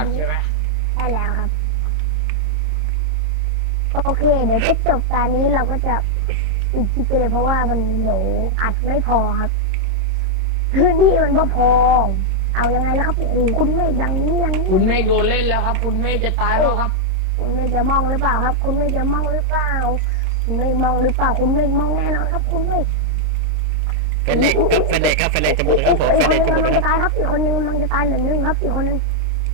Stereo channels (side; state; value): left; late; 26 ms